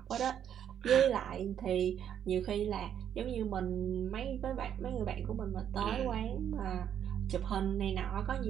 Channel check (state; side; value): quieter; left; 9.3 dB